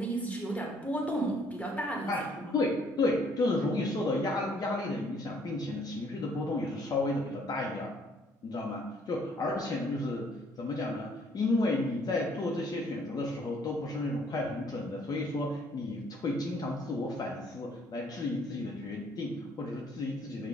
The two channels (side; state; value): both; normal; correlation 0.63